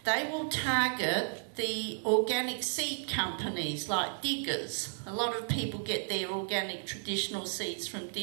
they will target the organic seed companies like Diggers. A lot of people get their organic traditional seeds from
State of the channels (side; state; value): left; silent; digital silence